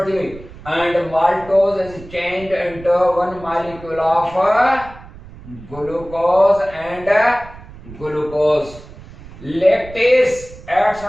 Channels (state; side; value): noise; right; rumble, 18 dB below the sound